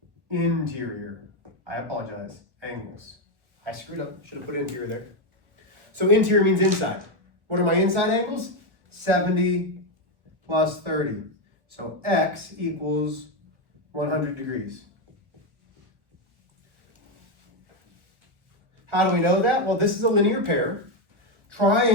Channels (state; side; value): late; left; 1.3 ms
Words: interior. I apologize, angles. I screwed up, should have put interior there. So interior means inside. What are my inside angles? 70 plus 30. So x equals 100 degrees. How do we know that? Well, this is a linear pair.